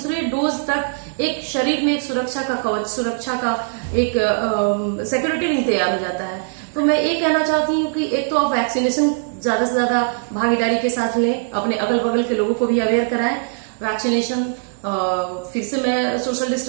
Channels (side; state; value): left; silent; 65 dB below the other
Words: डोज तक एक शरीर में एक सुरक्षा का कवच, सुरक्षा का एक सिक्योरिटी नहीं तैयार हो जाता है। तो मैं ये कहना चाहती हूँ कि एक तो आप वैक्सीनेशन ज्यादा से ज्यादा भागीदारी के साथ लें, अपने अगल बगल के लोगों को भी अवेयर कराएं वैक्सीनेशन। फिर से मैं सोशल